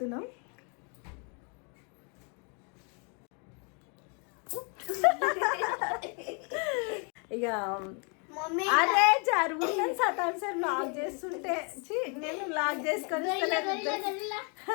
ఇక మమ్మీ అరే జరుగుతుంది సతాన్ సార్ లాక్ చేస్తుంటే ఛీ, నేను లాక్ చేసుకొని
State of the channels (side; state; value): right; quieter; 36.6 dB